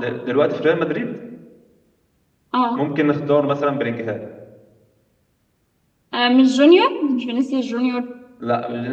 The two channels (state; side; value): identical; both; correlation 1.00